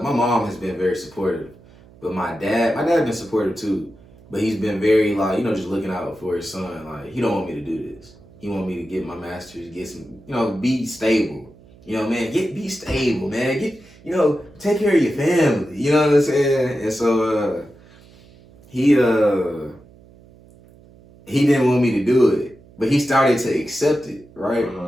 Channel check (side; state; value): right; noise; hum, 25 dB below the sound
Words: mom has been very supportive, but my dad's been supportive too, but he's been very like, just looking out for his son. Like, he don't want me to do this. He want me to get my master's, get some, be stable. Man, be stable, man. Take care of your family. You know what I'm saying? And so he didn't want me to do it, but he started to accept it, right?